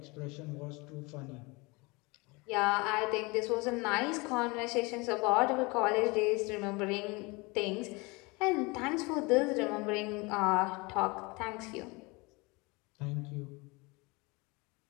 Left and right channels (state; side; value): quieter; right; 26.1 dB